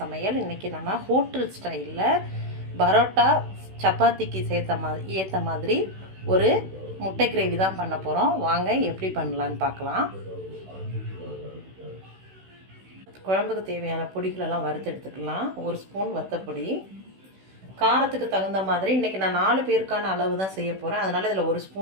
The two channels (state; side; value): late; left; 16 ms